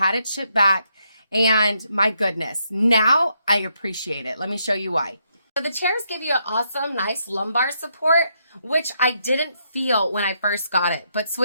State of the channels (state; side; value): inverted; both; correlation -0.77